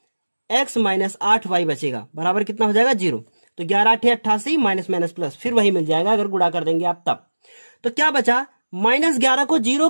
x माइनस 8y बचेगा, बराबर कितना हो जाएगा 0। तो 11 8 88 माइनस माइनस प्लस, फिर वही मिल जाएगा अगर गुणा कर देंगे आप तब। तो क्या बचा, -11 को 0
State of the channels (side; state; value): both; inverted; correlation -1.00